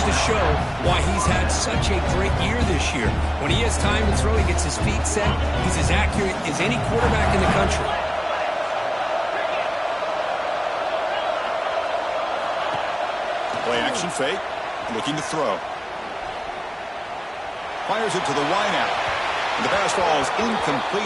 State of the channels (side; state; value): both; identical; correlation 1.00